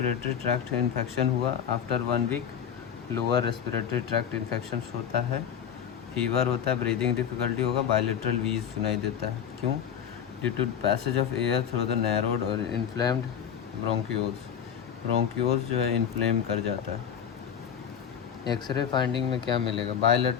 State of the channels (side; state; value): right; quieter; 8.4 dB